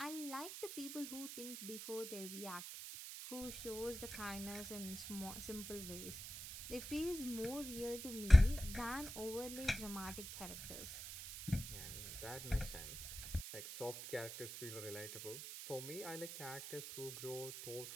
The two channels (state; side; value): noise; right; hiss, 8 dB below the sound